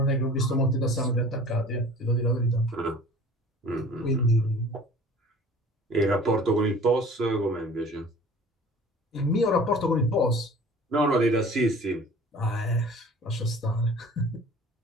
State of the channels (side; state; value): both; normal; correlation 0.46